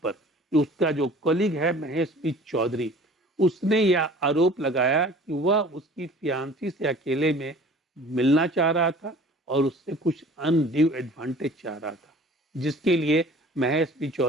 उसका जो कलीग है महेश बी चौधरी, उसने यह आरोप लगाया कि वह उसकी फियांसी से अकेले में मिलना चाह रहा था और उससे कुछ अनड्यू एडवांटेज चाह रहा था, जिसके लिए महेश बी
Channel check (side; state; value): both; normal; correlation 0.46